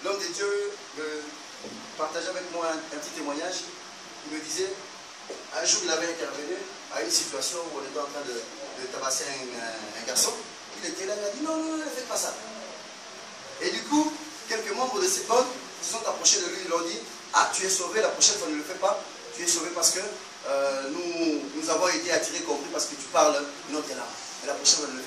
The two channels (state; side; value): identical; both; correlation 1.00